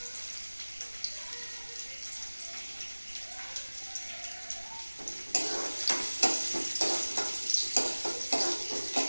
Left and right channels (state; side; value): inverted; both; correlation -1.00